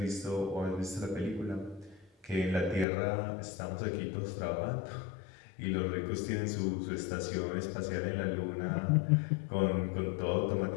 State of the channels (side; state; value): right; drops out; at 2.9 s